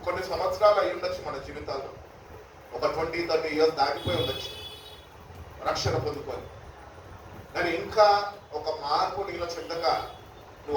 కొన్ని సంవత్సరాలు అయి ఉండొచ్చు, మన జీవితాల్లో ఒక 20-30 years దాటిపోయి ఉండొచ్చు రక్షణ పొందుకొని. కానీ ఇంకా ఒక మార్పు నీలో చెందక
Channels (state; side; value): identical; both; correlation 1.00